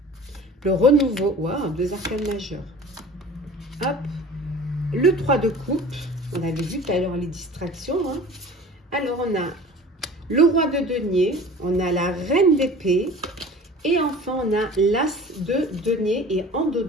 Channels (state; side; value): normal; both; correlation 0.42